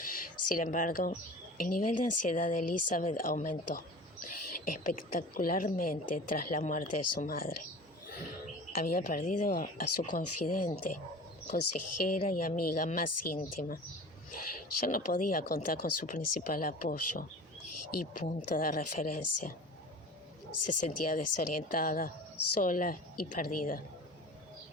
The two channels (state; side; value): normal; both; correlation 0.37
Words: Sin embargo, el nivel de ansiedad de Elizabeth aumentó espectacularmente tras la muerte de su madre. Había perdido a su confidente, consejera y amiga más íntima. Ya no podía contar con su principal apoyo y punto de referencia. Se sentía desorientada, sola y perdida.